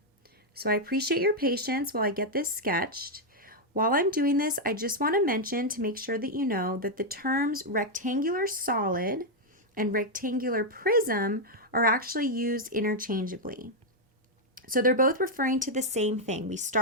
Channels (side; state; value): both; normal; correlation -0.02